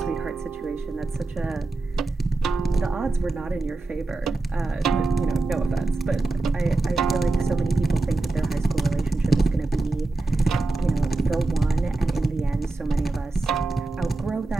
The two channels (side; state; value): left; quieter; 3.3 dB